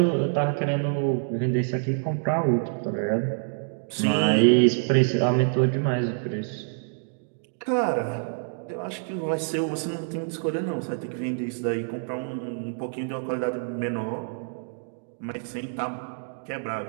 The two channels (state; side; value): silent; left; digital silence